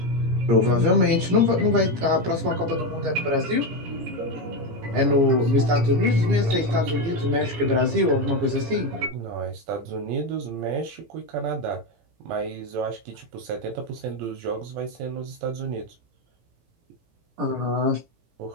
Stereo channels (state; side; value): late; left; 18 ms